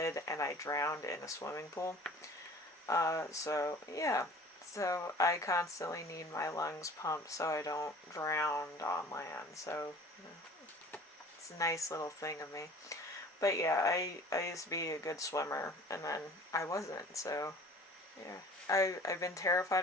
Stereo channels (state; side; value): normal; both; correlation 0.47